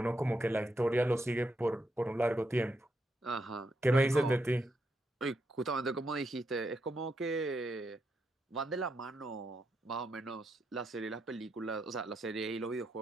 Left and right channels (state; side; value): normal; both; correlation 0.81